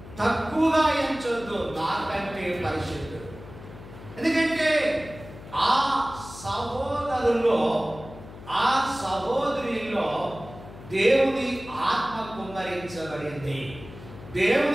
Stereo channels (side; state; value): left; noise; hum, 16 dB below the sound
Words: ఎంచొద్దు, నాకంటే పరిశుద్ధుడు. ఎందుకంటే ఆ సహోదరులో, ఆ సహోదరిలో దేవుని ఆత్మ కుమ్మరించబడింది.